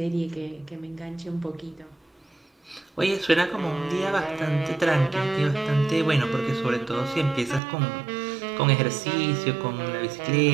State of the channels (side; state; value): left; drops out; at 7.6 s